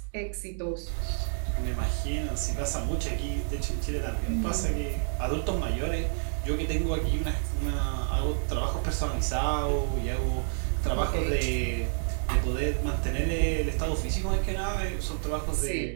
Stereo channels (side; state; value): left; silent; digital silence